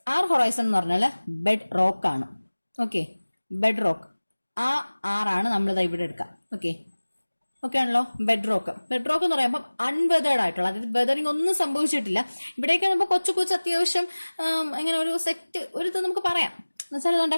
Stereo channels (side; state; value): both; inverted; correlation -1.00